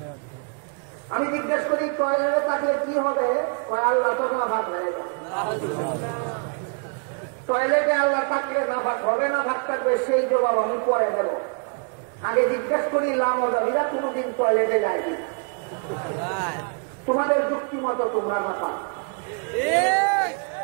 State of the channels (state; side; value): quieter; left; 39.1 dB